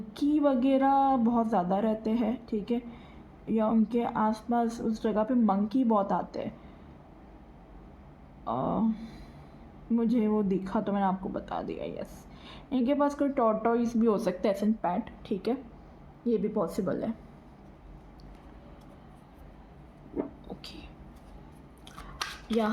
वगैरह बहुत ज़्यादा रहते हैं, ठीक है, या उनके आसपास उस जगह पे मंकी बहुत आते हैं। मुझे वो दिखा तो मैंने आपको बता दिया। यस, इनके पास कोई टॉर्टोइस भी हो सकता है, एसन पैट, ठीक है, ये भी पॉसिबल है, ओके।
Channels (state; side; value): identical; both; correlation 1.00